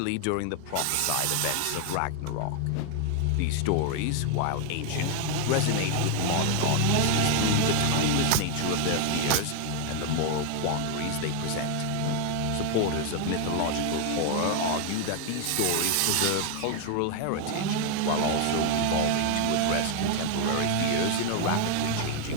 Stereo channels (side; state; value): both; different; correlation 0.00